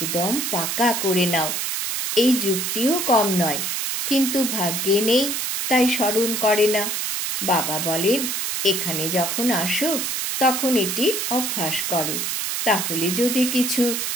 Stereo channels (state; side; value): noise; right; hiss, 1 dB below the sound